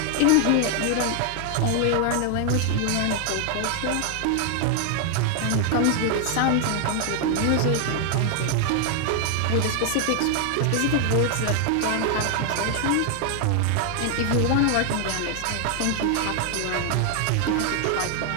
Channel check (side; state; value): both; different; correlation 0.00